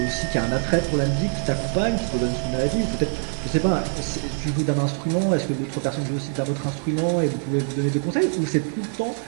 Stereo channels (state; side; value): silent; left; 63 dB below the other